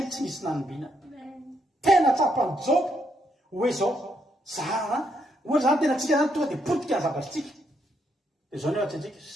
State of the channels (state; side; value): normal; both; correlation 0.76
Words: tsy misy nanombiana tena tsapany Joba hoe zao ohatra zany tena tsika zany tonga dia potika ny zavatritsika dia zao ny ohatra antsika